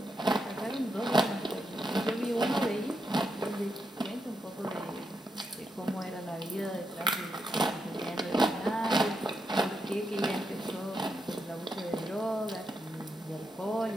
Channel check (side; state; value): both; normal; correlation 0.83